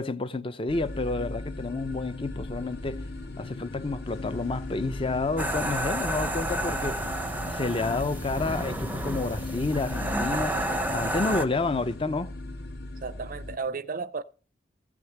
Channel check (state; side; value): normal; both; correlation 0.55